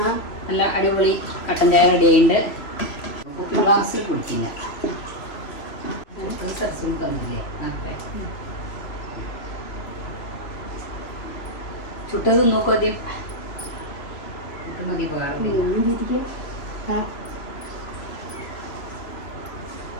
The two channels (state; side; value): late; right; 3.0 ms